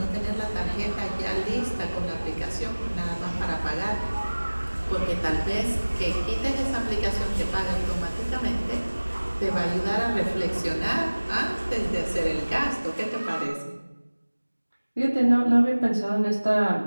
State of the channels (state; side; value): inverted; both; correlation -1.00